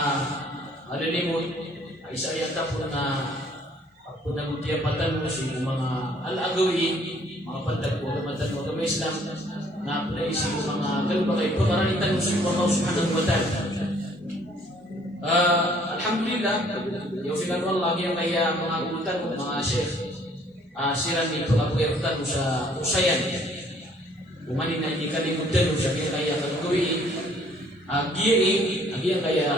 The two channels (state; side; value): normal; both; correlation 0.60